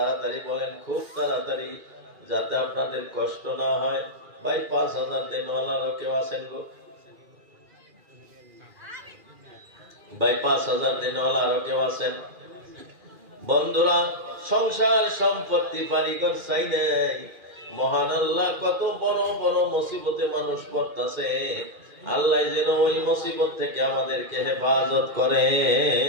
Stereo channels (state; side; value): late; left; 2.4 ms